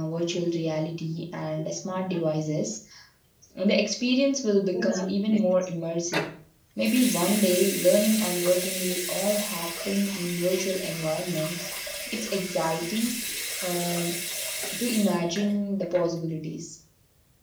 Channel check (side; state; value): both; identical; correlation 1.00